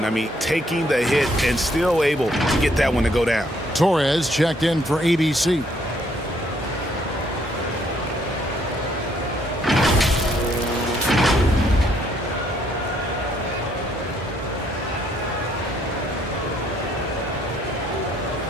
I mean, taking the hit and still able to get that one to go down. Torres checked in for ABC.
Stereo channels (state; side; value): normal; both; correlation 0.68